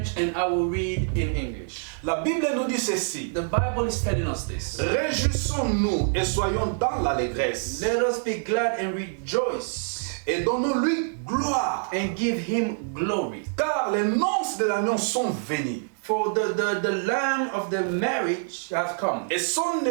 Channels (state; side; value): silent; left; digital silence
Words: and I will read in English. La Bible nous dit ceci. The Bible is telling us this. Réjouissons-nous et soyons dans l'allégresse. Let us be glad and rejoice Et donnons-lui gloire. and give him glory. Car les noces de l'agneau sont venues. For the lamb of the marriage has come, Et son